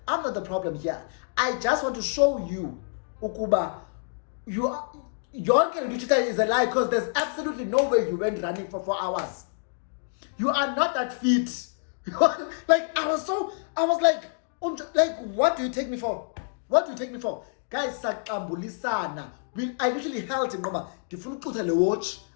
I'm not the problem here. I just want to show you, Ukuba, your is a lie, because there's absolutely no way you went running for 4 hours. You are not that fit. Like I was like, what do you take me for? Guys, sakambulisana. I literally held him. The watch.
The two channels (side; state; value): right; silent; digital silence